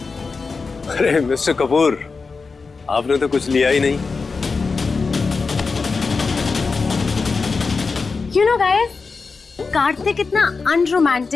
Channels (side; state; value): right; quieter; 4.5 dB